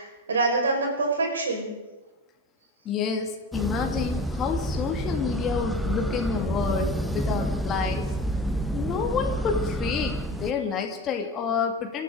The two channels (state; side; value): normal; both; correlation 0.30